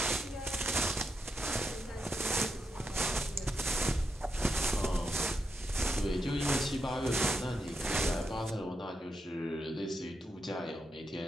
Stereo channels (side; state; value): both; normal; correlation 0.84